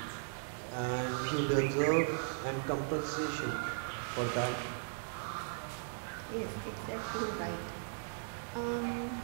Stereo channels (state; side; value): silent; left; digital silence